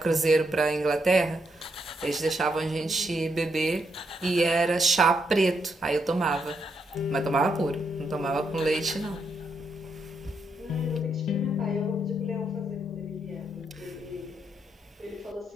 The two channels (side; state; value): both; normal; correlation 0.79